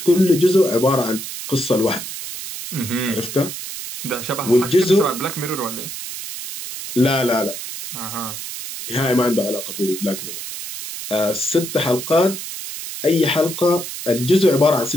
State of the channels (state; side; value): noise; right; hiss, 8 dB below the sound